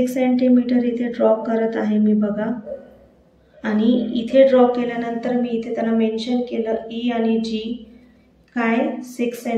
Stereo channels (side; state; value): both; identical; correlation 1.00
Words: सेंटीमीटर इथे ड्रॉ करत आहे मी बघा. आणि इथे ड्रॉ केल्यानंतर मी इथे त्यांना मेन्शन केलं E आणि G काय 6